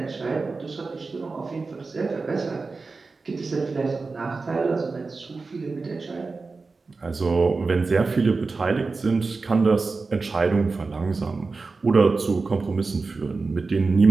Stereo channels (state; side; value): quieter; left; 4.1 dB